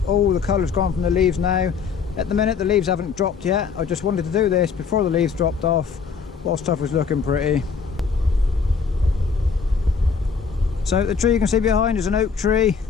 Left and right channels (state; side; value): quieter; right; 5.7 dB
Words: all the colour's gone from the leaves now. At the minute the leaves haven't dropped yet. I just wanted to do this before the leaves dropped off while stuff was looking pretty. So the tree you can see behind is an oak tree.